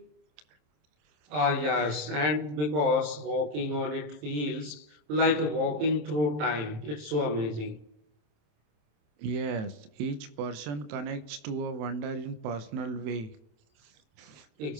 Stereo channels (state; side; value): late; left; 27 ms